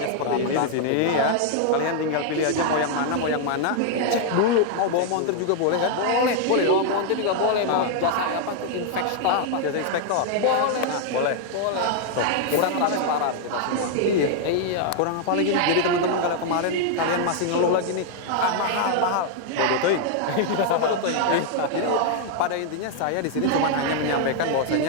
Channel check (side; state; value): both; different; correlation -0.01